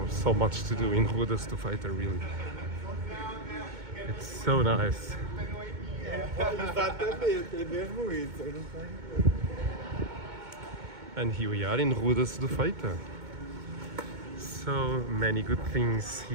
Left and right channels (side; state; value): left; late; 2.2 ms